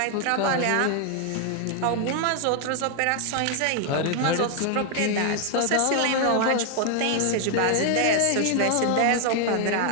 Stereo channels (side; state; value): both; different; correlation 0.00